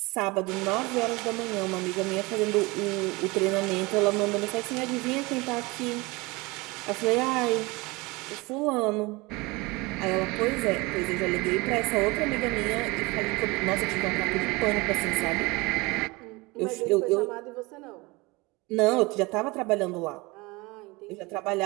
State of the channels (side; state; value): left; quieter; 24.1 dB